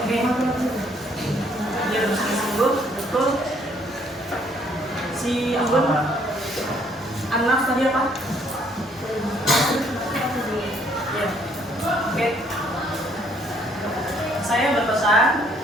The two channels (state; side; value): normal; both; correlation 0.65